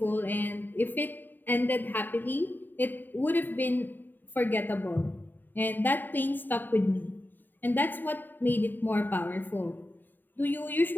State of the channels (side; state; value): right; late; 0.091 ms